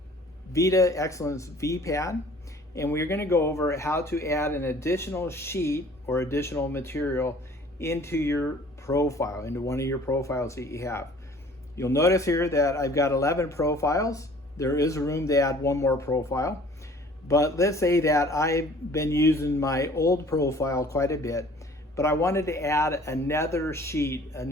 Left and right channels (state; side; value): normal; both; correlation 0.52